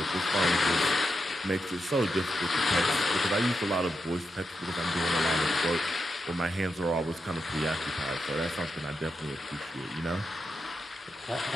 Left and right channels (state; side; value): normal; both; correlation 0.86